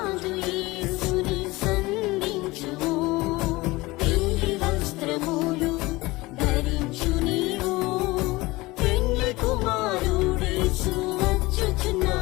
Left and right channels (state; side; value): quieter; right; 21.1 dB